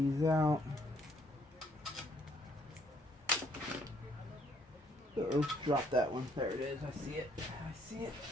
out. Uh-oh, drop that one. There it is. I see it. I see it.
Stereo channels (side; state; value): both; normal; correlation 0.68